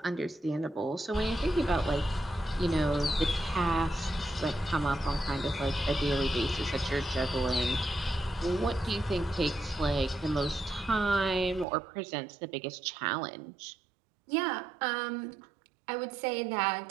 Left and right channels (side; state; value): left; drops out; at 11.7 s